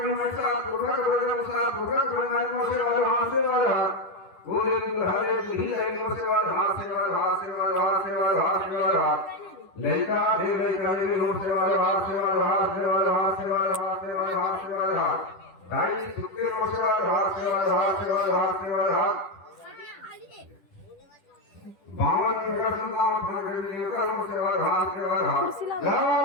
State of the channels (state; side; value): late; right; 10 ms